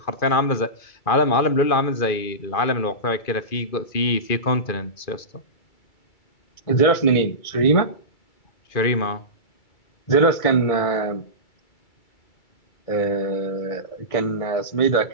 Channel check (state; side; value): late; right; 2.4 ms